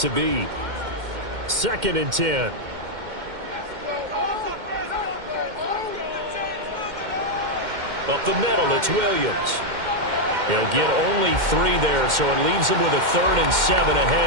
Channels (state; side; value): late; left; 2.1 ms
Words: be. 2nd and 10. Up the middle, it's Williams. He'll get only 3 there, so it leaves him with a 3rd and 7